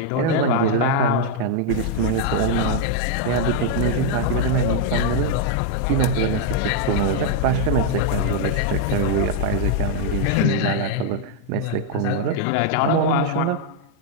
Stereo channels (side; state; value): both; different; correlation -0.01